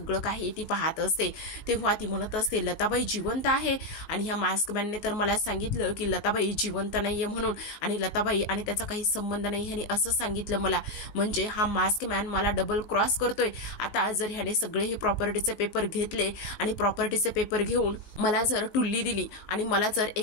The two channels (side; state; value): right; late; 20 ms